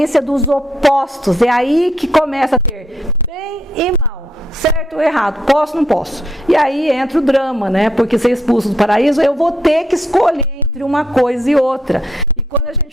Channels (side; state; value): both; normal; correlation 0.74